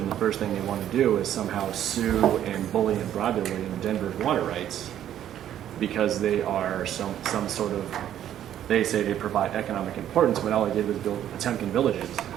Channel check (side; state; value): left; quieter; 11.0 dB